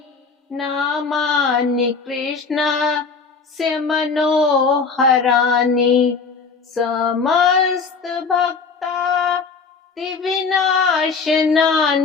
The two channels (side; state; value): right; quieter; 4.9 dB